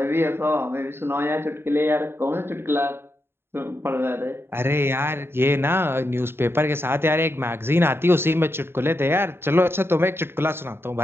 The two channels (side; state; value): left; late; 0.11 ms